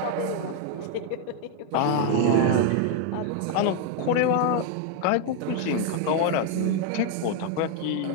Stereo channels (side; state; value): both; different; correlation 0.00